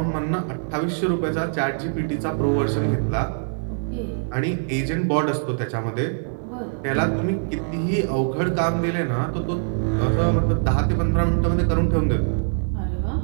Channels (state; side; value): silent; left; digital silence